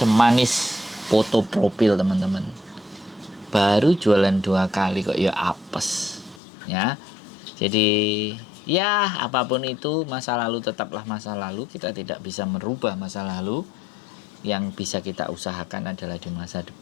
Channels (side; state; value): right; drops out; at 6.4 s